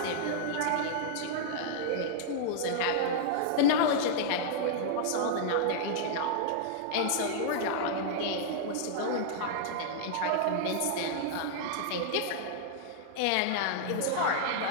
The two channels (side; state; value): both; different; correlation -0.01